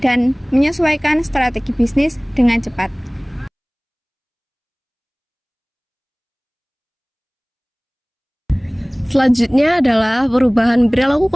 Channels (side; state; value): both; identical; correlation 1.00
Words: dan menyesuaikan strategi bisnis dengan cepat. Selanjutnya adalah perubahan perilaku